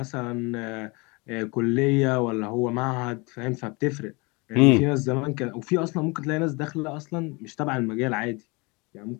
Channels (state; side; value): quieter; right; 27.6 dB